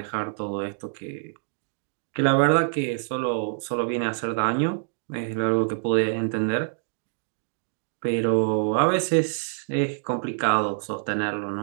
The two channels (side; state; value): left; silent; digital silence